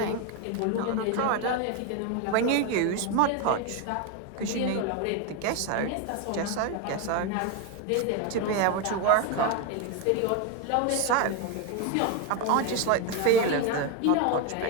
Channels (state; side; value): different; both; correlation 0.02